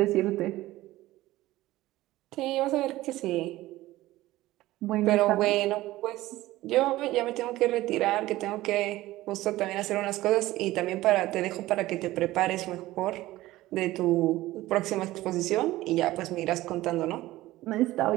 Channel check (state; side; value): quieter; left; 16.9 dB